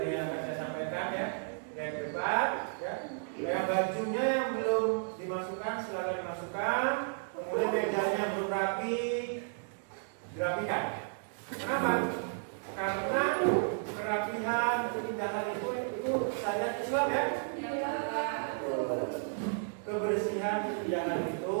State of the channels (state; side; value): silent; left; digital silence